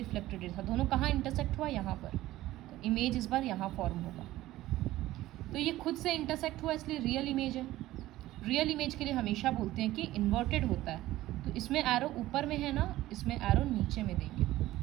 रे था, दोनों कहाँ इंटरसेक्ट हुआ, यहाँ पर, तो इमेज इस बार यहाँ फॉर्म होगा। तो ये खुद से इंटरसेक्ट हुआ इसलिए रियल इमेज है। रियल इमेज के लिए हमेशा बोलते हैं कि इन्वर्टेड होता है, तो इसमें एरो ऊपर में है ना, इसमें एरो नीचे में देंगे,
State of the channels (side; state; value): left; quieter; 15.9 dB